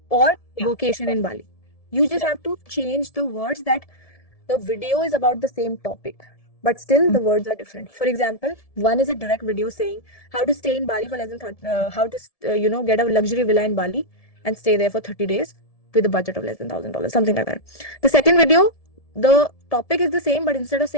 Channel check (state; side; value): late; right; 1.7 ms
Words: or Yeah. vacation in Bali. You just have to change the words that the video is about the same topic, but still the words are different. For example, one is a direct video saying how to stay in Bali for less than get a luxury villa in Bali and stay there for 30 days with a budget of less than $1,000, something like that. The second video, the topic is the same, but instead of